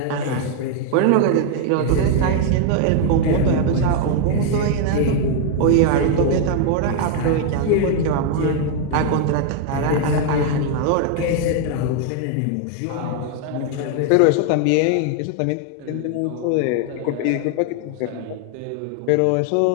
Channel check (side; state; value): both; different; correlation 0.00